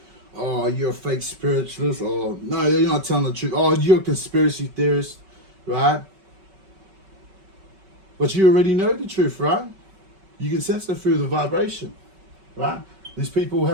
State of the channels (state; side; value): late; left; 5.2 ms